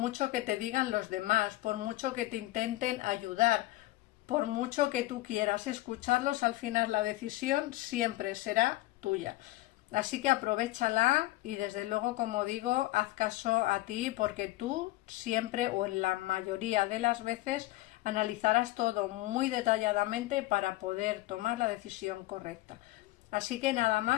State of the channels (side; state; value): right; quieter; 18.0 dB